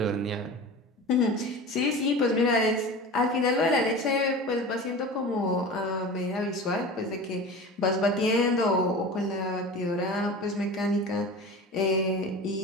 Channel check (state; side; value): normal; both; correlation 0.33